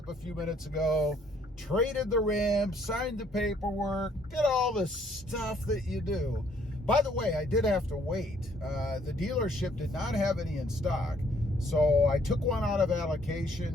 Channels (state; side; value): normal; both; correlation 0.64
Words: a few minutes ago. Traded the rim, signed the paperwork, did all the stuff that you do. By the way, I did have to wait. The dealership did not have any in stock, so I took one out of